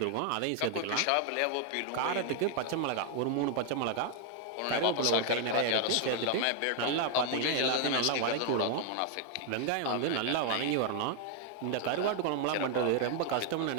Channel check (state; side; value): different; both; correlation 0.00